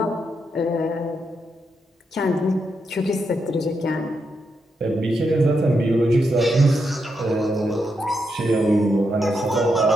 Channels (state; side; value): normal; both; correlation 0.82